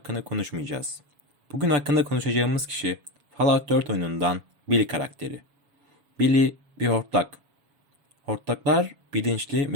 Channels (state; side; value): late; left; 7.1 ms